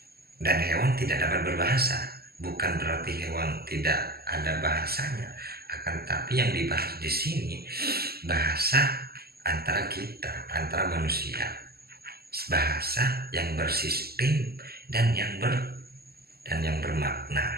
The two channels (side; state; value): left; late; 0.45 ms